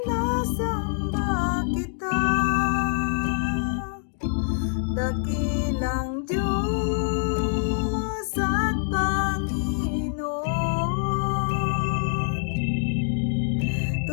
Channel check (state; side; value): silent; right; digital silence